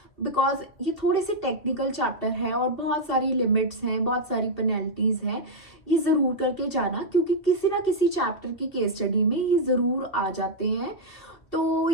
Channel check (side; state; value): right; late; 2.6 ms